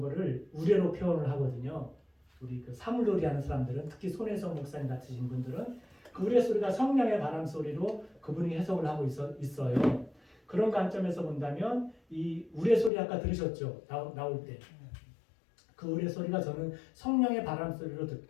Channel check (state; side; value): drops out; right; at 12.9 s